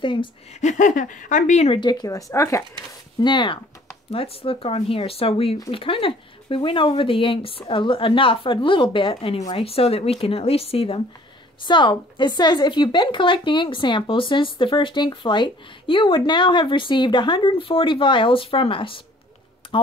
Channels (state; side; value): normal; both; correlation 0.55